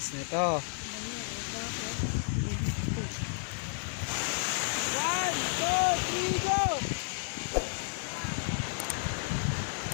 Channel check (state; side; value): silent; right; 56 dB below the other